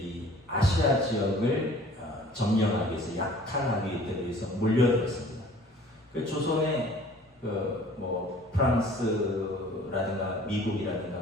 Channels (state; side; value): normal; both; correlation 0.50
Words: 이 아시아 지역을 점령하기 위해서 약탈하기 위해서 몰려들었습니다. 그 조선의 뭐 프랑스라든가